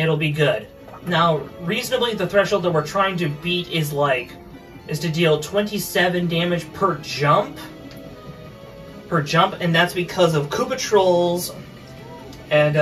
be good. Now, reasonably, the threshold that we're trying to beat is to deal 27 damage per jump. And that's because of Koopa Trolls, and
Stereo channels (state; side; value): identical; both; correlation 1.00